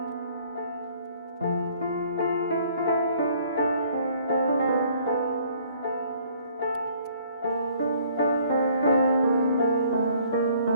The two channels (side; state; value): both; inverted; correlation -0.59